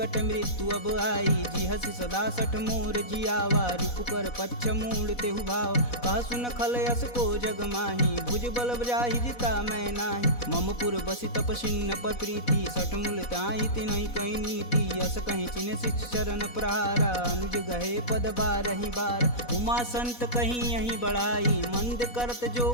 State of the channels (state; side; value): late; right; 4.1 ms